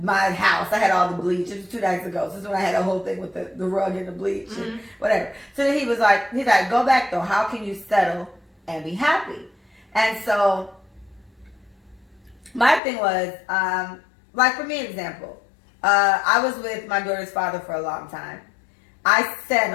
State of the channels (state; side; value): drops out; right; at 12.8 s